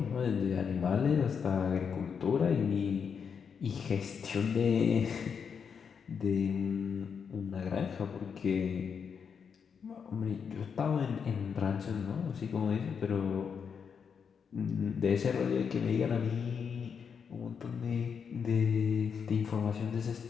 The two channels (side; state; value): right; quieter; 6.6 dB